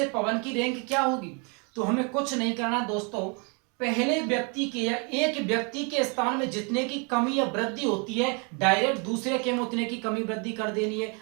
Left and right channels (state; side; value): quieter; left; 34.3 dB